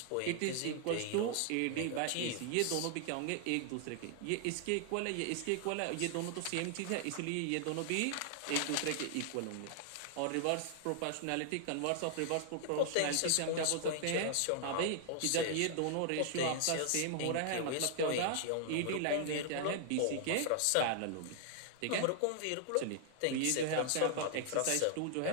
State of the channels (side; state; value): both; different; correlation 0.00